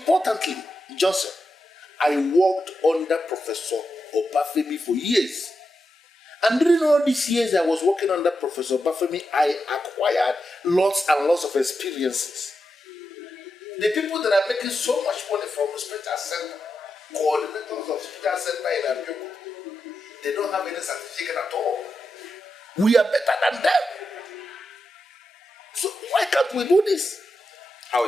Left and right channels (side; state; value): both; normal; correlation 0.88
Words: Johnson, I worked under Professor Obafemi for years. And during all these years I was working under Professor Obafemi, I acquired lots and lots of experiences. The people that are making so much money from the Special Center, coordinators of Special Center in Abeokuta, they don't have any certificate at all. We are better than them. So why can't we do this? How